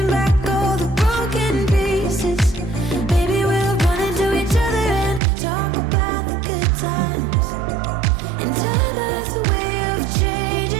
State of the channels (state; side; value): drops out; left; at 5.2 s